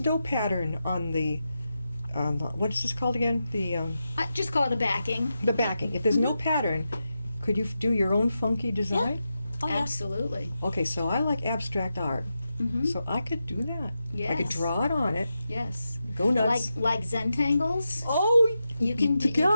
pattern on the what is this called again? I just call it a backing. The backing. If there's no pattern, could you do your own funky design? oh, yeah. Absolutely. Okay, so I like abstract art, Mm-hmm. so I could do that. I could Yes. draw it on it. Yes. Go nuts. Like Zentangles. Oh, You can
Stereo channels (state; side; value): inverted; both; correlation -0.89